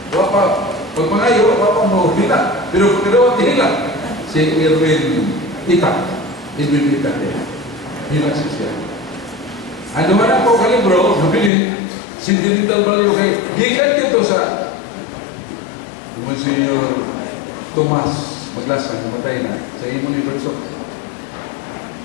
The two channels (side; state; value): right; drops out; at 11.5 s